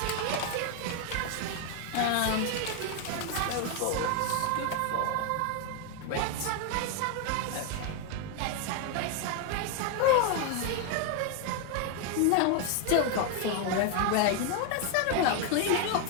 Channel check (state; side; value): different; both; correlation 0.01